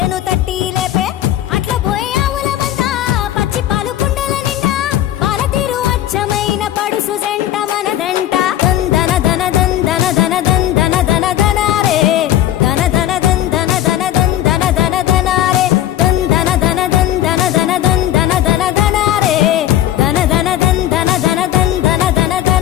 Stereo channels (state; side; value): quieter; right; 12.5 dB